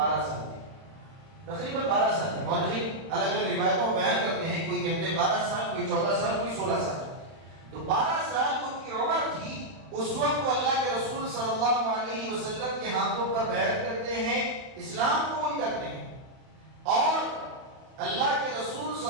سال تھی، تقریباً 12 سال تھی۔ مورخین الگ الگ روایتوں میں بیان کرتے ہیں، کوئی کہتے ہیں 12 سال، کوئی 14 سال، کوئی 16 سال۔ تو 12 سال ان کی عمر تھی، اس وقت وہ اللہ کے رسول صلی اللہ علیہ وسلم کے ہاتھوں پر بیعت کرتے ہیں، اسلام قبول کرتے ہیں، اور اللہ کے رسول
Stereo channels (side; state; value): left; late; 31 ms